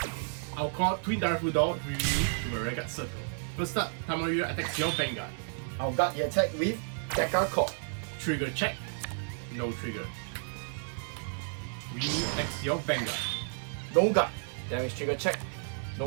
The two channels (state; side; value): silent; left; 57 dB below the other